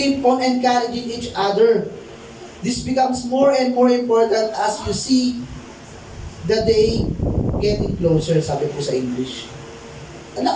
on encouraging each other. This becomes more and more important as you see the day getting closer, sabi po sa English.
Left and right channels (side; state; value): both; identical; correlation 1.00